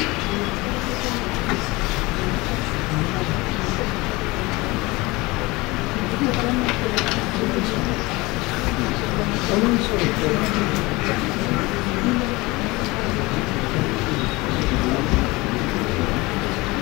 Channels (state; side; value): quieter; right; 22.6 dB